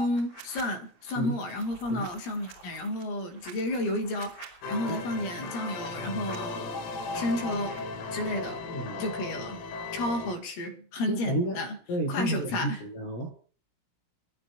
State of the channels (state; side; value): late; right; 17 ms